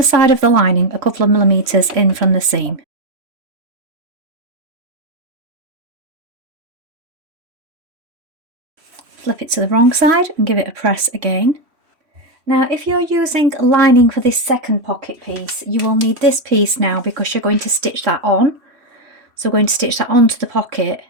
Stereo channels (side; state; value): left; late; 3.1 ms